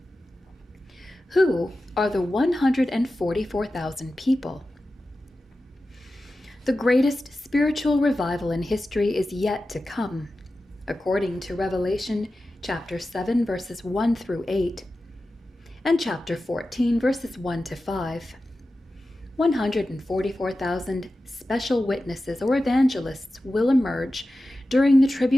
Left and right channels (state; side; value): normal; both; correlation 0.93